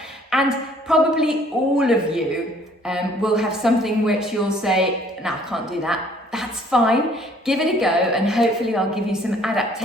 and probably all of you will have something which you'll say, no, I can't do that. That's fine, give it a go and hopefully I'll give you some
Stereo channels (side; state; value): both; normal; correlation 0.58